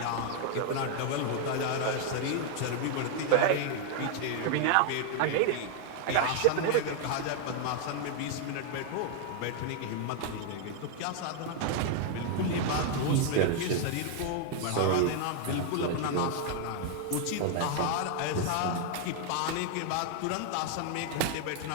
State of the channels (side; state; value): both; different; correlation 0.00